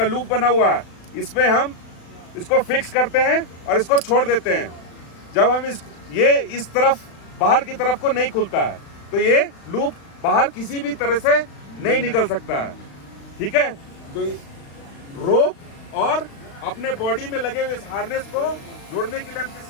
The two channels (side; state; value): right; late; 36 ms